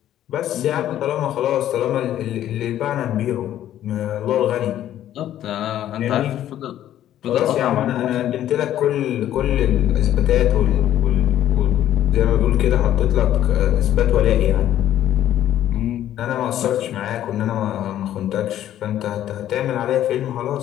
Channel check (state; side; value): quieter; right; 12.0 dB